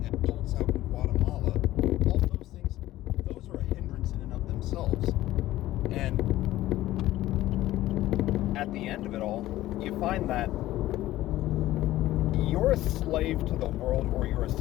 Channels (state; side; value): quieter; right; 15.4 dB